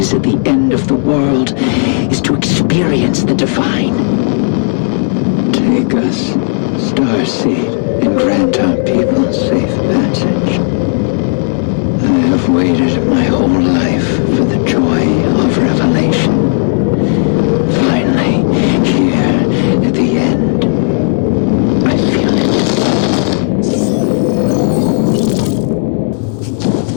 at the end of the world is to experience the divine. Take us, Starseed, and grant our people safe passage. I have waited my whole life for the joy of revelation. Finally, here at the end, I feel it.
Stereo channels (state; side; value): silent; right; 56 dB below the other